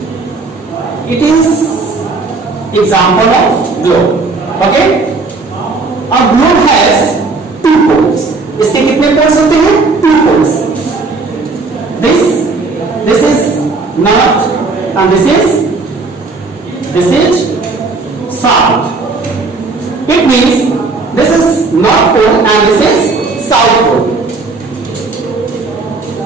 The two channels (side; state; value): left; quieter; 3.9 dB